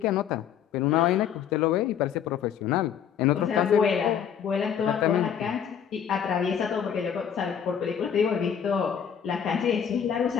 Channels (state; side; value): quieter; right; 8.4 dB